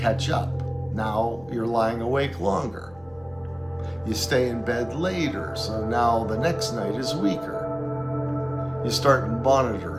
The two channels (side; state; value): left; noise; hum, 26 dB below the sound